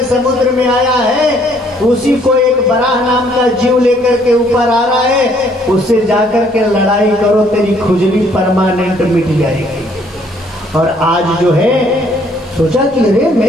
समुद्र में आया है उसी को एक बराह नाम का जीव लेकर के ऊपर आ रहा है, उससे जाकर के लड़ाई करो, तेरी खुजली परमानेंट मिट जाएगी। और आज जो है सोचा कि अरे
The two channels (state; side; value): normal; both; correlation 0.64